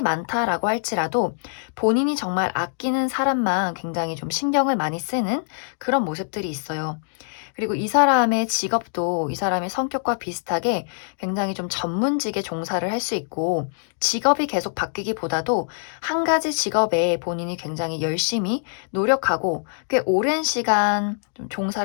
많다라고 할지라도 본인이 정말 아끼는 사람만 굉장히 좀 신경을 많이 쓰는 그런 모습들이 있어요. 그리고 이 사람의 직업도 이 사람의 성격과 비슷하게 굉장히 좀 전문직에 종사를 할 수 있고, 직업이 계속 바뀌기보다도 한 가지 직업에 본인이 굉장히 열심히 노력하고 꽤 오랜 시간 좀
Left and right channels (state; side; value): silent; right; digital silence